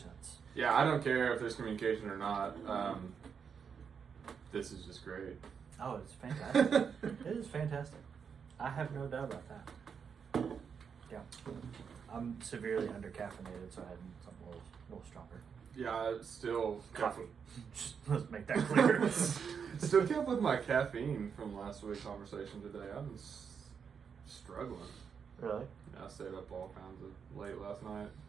Yeah, I don't care if there's communication or not. This is just great. Oh, it's fantastic. It is fantastic. I have no doubt about that. Yeah. I'm severely under-caffeinated, so I had something a little stronger. Yeah, still Coffee. Just let's make that clear. Still kept with my caffeine from last week's conversation today. I've been struggling. Really? Yeah, I stayed up all kinds of late last night.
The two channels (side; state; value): left; quieter; 6.6 dB